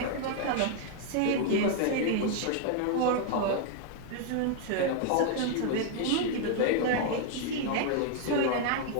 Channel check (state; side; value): different; both; correlation 0.00